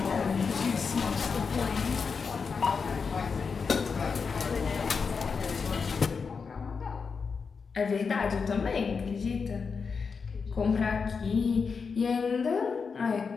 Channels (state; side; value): quieter; right; 5.4 dB